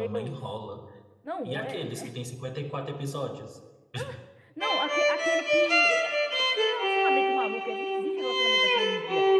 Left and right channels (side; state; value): both; identical; correlation 1.00